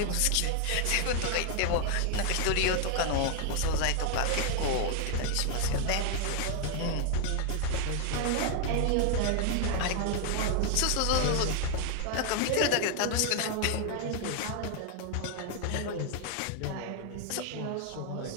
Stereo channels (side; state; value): both; different; correlation 0.00